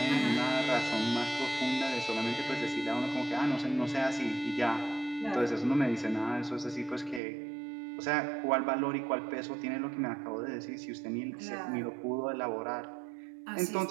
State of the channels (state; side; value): drops out; left; at 7.2 s